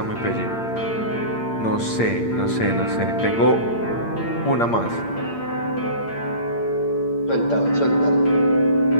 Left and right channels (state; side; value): late; right; 8.7 ms